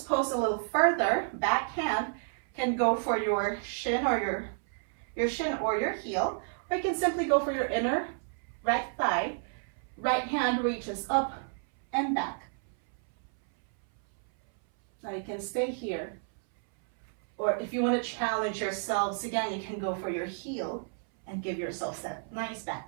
pose a little further. Back hand can go for your shin or your shin or your heel, or you can simply go for your inner right thigh. Right hand reaches up and back. Now you can stay here. Or if you want to challenge yourselves again, you can go for your heel and give yourself that nice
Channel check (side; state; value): left; silent; 57 dB below the other